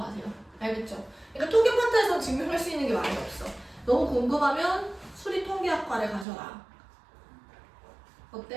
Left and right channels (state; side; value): drops out; left; at 6.2 s